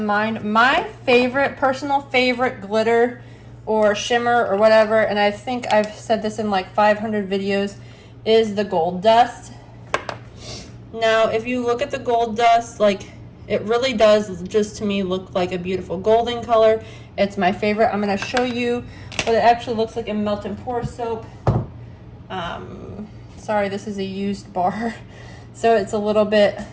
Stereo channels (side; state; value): both; identical; correlation 1.00